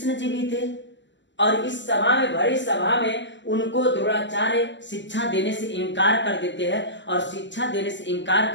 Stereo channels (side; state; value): right; late; 0.53 ms